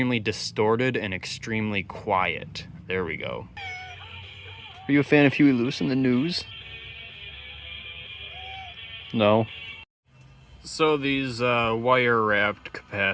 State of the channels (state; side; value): identical; both; correlation 1.00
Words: distorted and extremely quiet. There we go. Are you a fan of Huey Lewis in the news? No. So these wire-wrapped